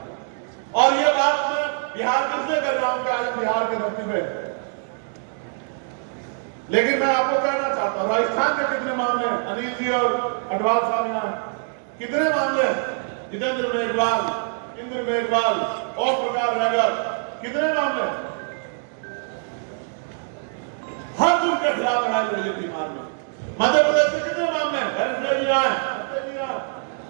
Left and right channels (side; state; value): left; silent; 63 dB below the other